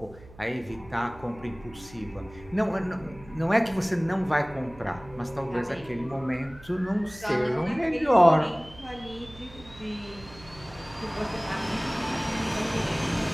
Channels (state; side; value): noise; right; hum, 20 dB below the sound